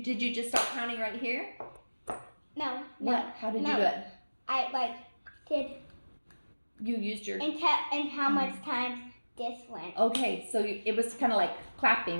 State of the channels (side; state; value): both; inverted; correlation -1.00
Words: you just start counting right here? No. What? How did you do it? I did. You used your... And how much times this went. Okay, so it was kind of like